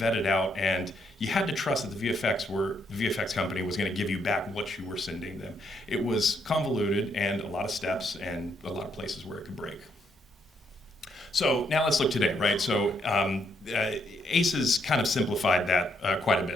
out, and you had to trust that the VFX company was going to give you back what you were sending them. It was convoluted and a lot of steps and a lot of places where it could break. So now let's look today, right? So ACES kind of simplified that quite a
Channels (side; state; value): both; normal; correlation 0.75